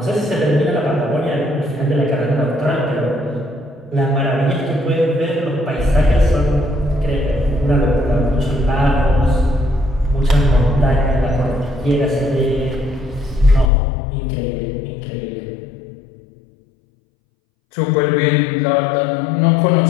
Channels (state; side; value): drops out; right; at 13.7 s